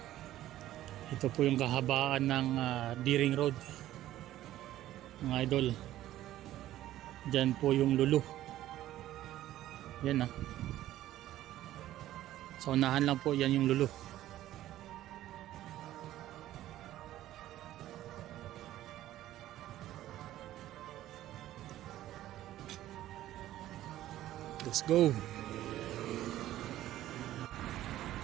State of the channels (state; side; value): quieter; left; 13.9 dB